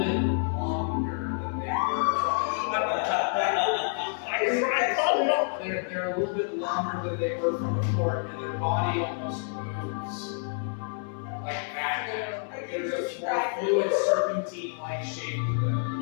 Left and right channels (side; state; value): right; silent; 59 dB below the other